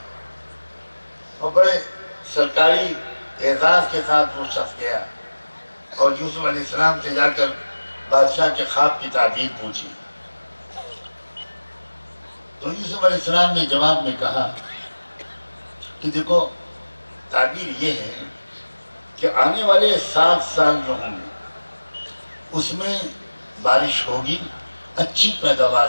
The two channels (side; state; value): both; inverted; correlation -1.00